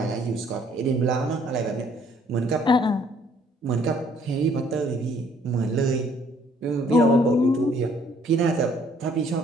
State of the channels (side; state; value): both; normal; correlation 0.62